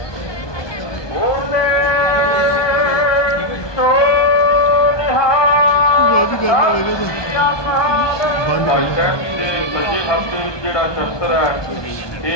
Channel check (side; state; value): right; late; 1.2 ms